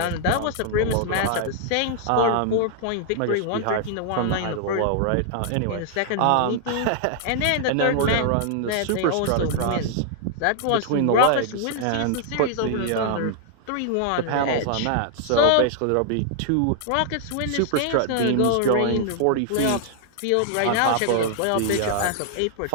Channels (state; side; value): different; both; correlation 0.00